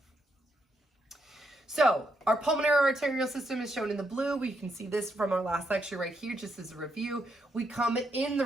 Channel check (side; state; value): both; normal; correlation 0.79